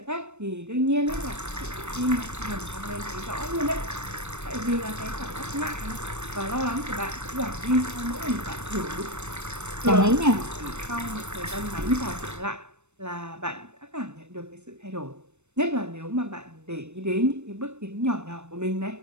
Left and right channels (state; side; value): late; left; 0.82 ms